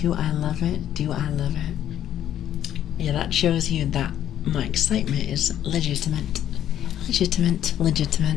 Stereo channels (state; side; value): quieter; right; 11.1 dB